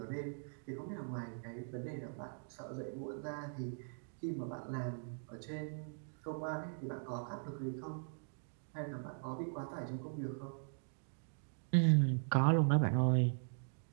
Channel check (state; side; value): silent; left; digital silence